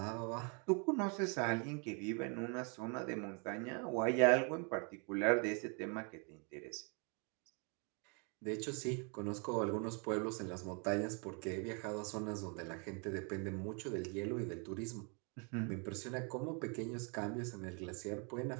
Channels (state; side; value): quieter; left; 35.8 dB